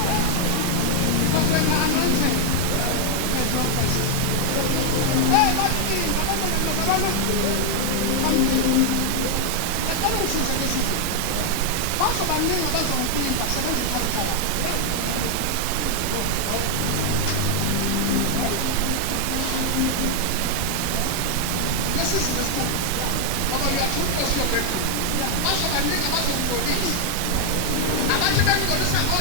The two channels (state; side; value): different; both; correlation 0.00